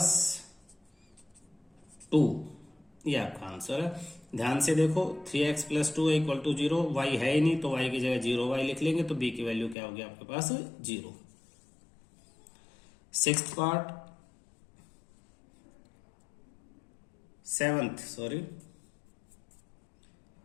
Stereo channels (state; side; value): drops out; right; at 9.8 s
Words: 2। ये आपका आंसर है। ध्यान से देखो 3x plus 2 equal to 0, y है ही नहीं तो y की जगह 0y लिख लेंगे तो b की वैल्यू क्या होगी आपके पास 0। Sixth part,